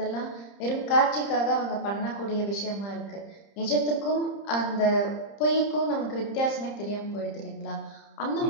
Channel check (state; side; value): late; right; 30 ms